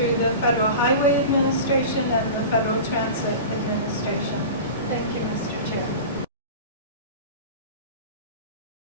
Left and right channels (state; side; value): inverted; both; correlation -0.32